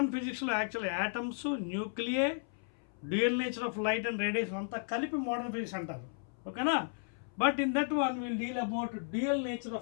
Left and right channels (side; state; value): right; silent; 55 dB below the other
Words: ఫిజిక్స్లో actually atoms nuclei dual nature of light and radiation అంతా కలిపి modern physics అంటారు, ఓకేనా. But in that one will deal about dual nature